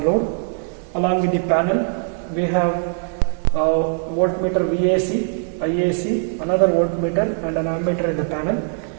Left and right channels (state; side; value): silent; left; 57 dB below the other